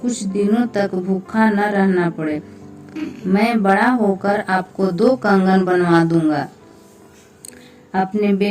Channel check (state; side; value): identical; both; correlation 1.00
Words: दिनों तक भूखा न रहना पड़े। मैं बड़ा होकर आपको 2 कंगन बनवा दूंगा। अपने